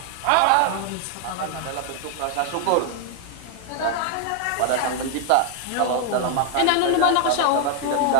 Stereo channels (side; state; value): both; different; correlation 0.00